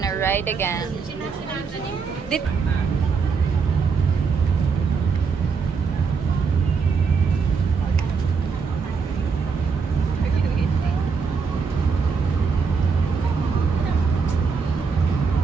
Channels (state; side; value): quieter; left; 5.4 dB